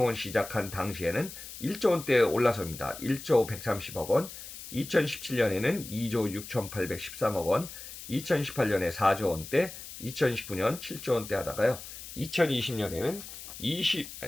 시작한 당시에는 1조 원대에 올라섭니다. 1조 130억 원, 2017년에는 2조 6,813억 원, 2018년에 4조 원대, 2019년 7조 원대 하다가요. 2020년에는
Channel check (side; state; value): left; noise; hiss, 12 dB below the sound